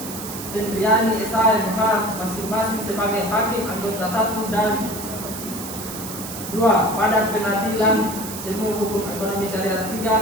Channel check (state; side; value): noise; right; hiss, 9 dB below the sound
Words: Tendriani SHMA masing-masing sebagai Hakim anggota 1 dan 2 pada Pengadilan Semu Hukum Ekonomi Syariah